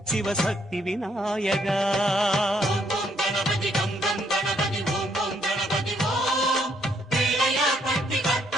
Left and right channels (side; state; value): both; normal; correlation 0.71